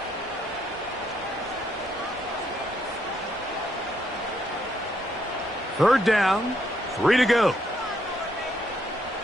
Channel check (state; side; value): normal; both; correlation 0.74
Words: Third down, 3 to go.